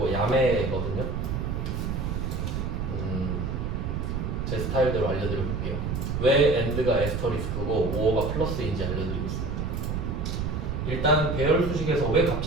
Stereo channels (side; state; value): right; noise; rumble, 2 dB below the sound